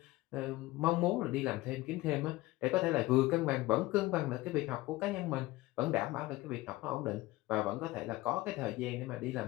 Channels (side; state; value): right; quieter; 18.8 dB